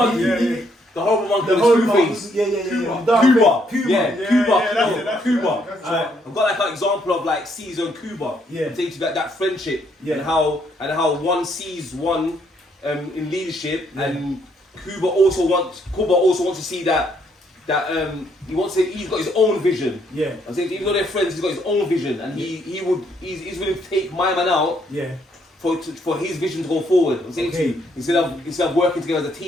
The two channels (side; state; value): both; normal; correlation 0.71